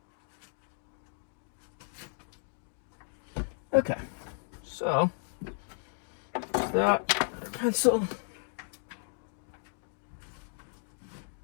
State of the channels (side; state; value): right; silent; digital silence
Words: Okay. So that pencil.